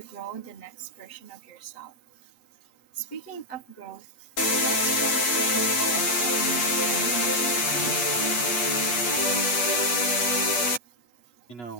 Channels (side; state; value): right; late; 8.2 ms